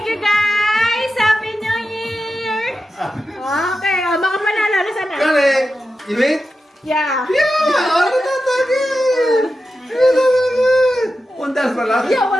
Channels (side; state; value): both; normal; correlation 0.90